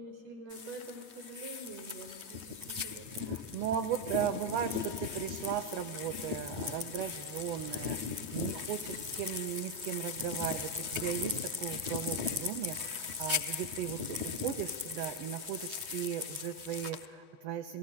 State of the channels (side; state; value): left; late; 9.2 ms